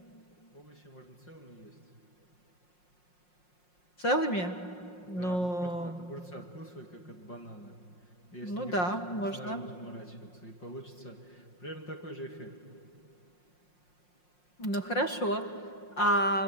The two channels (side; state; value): right; late; 5.6 ms